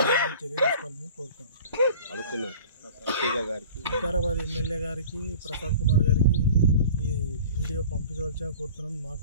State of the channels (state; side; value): inverted; both; correlation -0.43